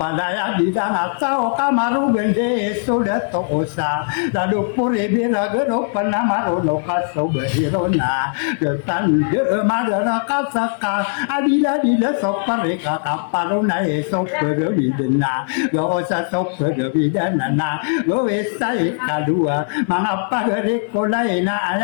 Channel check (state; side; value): silent; right; digital silence